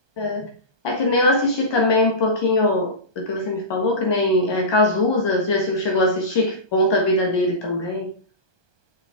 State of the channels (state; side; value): late; right; 1.2 ms